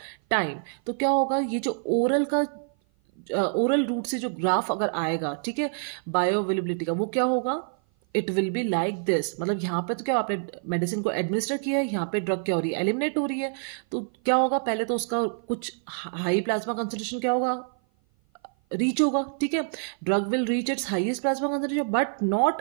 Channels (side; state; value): left; silent; 56 dB below the other